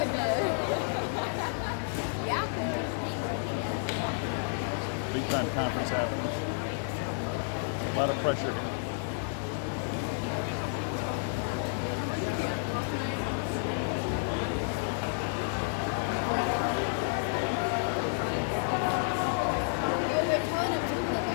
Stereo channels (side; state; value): right; silent; digital silence